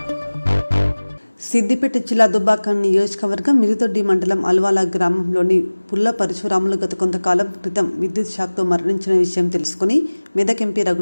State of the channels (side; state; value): both; inverted; correlation -1.00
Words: సిద్దిపేట జిల్లా దుబ్బాక నియోజకవర్గం మిరుదొడ్డి మండలం అల్వాల గ్రామంలోని పుల్ల పరశురాములు గత కొంతకాలం క్రితం విద్యుత్ షాక్తో మరణించిన విషయం తెలుసుకుని మెదక్ ఎంపీ